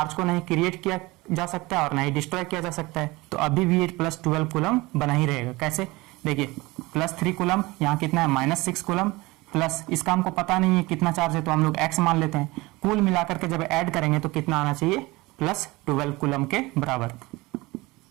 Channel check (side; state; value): left; quieter; 22.0 dB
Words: को नहीं क्रिएट किया जा सकता है और नहीं डिस्ट्रॉय किया जा सकता है, तो अभी भी ये +12 कूलम बना ही रहेगा। कैसे, देखिए +3 कूलम, यहाँ कितना है -6 कूलम, प्लस इसका हमको पता नहीं है कितना चार्ज है तो हम लोग x मान लेते हैं। कुल मिलाकर के जब ऐड करेंगे तो कितना आना चाहिए, +12 कूलम के बराबर।